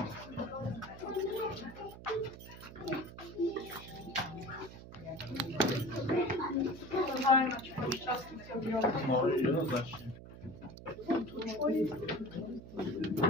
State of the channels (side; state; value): right; noise; hum, 15 dB below the sound